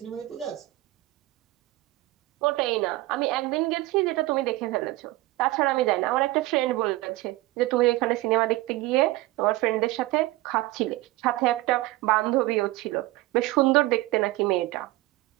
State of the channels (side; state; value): left; quieter; 18.9 dB